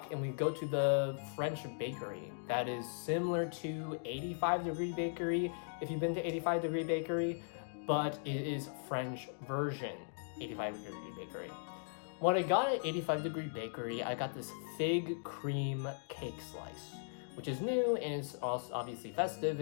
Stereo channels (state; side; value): silent; right; digital silence